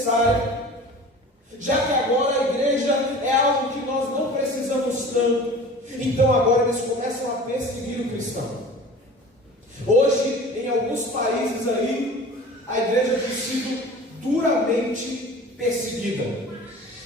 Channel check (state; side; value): normal; both; correlation 0.41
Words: já que agora a igreja é algo que nós não precisamos tanto, então agora eles começam a perseguir o cristão. Hoje, em alguns países aí, a igreja tem sido duramente perseguida.